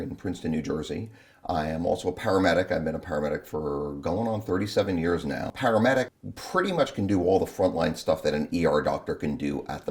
in Princeton, New Jersey. I am also a paramedic. I've been a paramedic for going on 37 years now. Paramedic pretty much can do all the frontline stuff that an ER doctor can do at the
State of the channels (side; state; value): both; identical; correlation 1.00